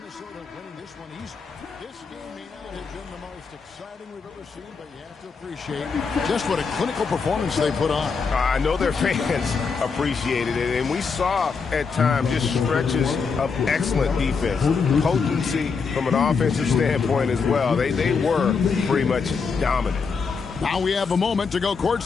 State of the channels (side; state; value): right; quieter; 5.3 dB